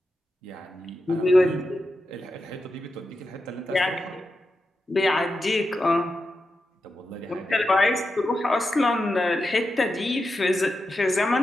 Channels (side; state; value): both; normal; correlation 0.89